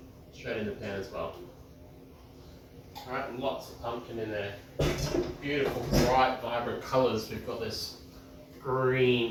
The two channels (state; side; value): identical; both; correlation 1.00